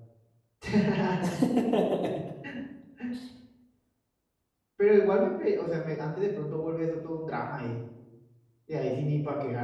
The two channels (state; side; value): identical; both; correlation 1.00